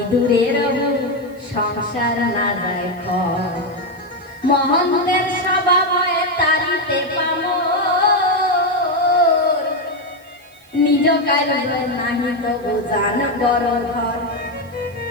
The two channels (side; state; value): right; noise; hiss, 29 dB below the sound